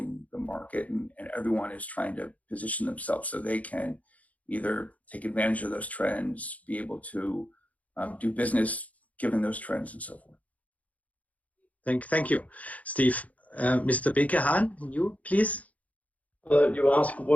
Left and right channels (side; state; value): right; late; 0.070 ms